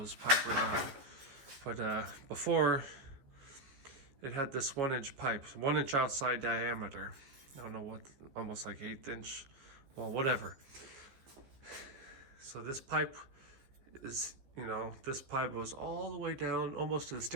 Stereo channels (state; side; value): late; left; 15 ms